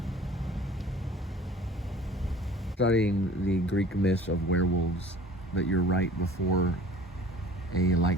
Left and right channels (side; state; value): both; normal; correlation 0.48